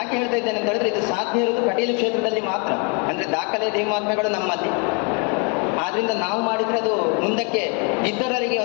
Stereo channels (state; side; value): quieter; right; 34.7 dB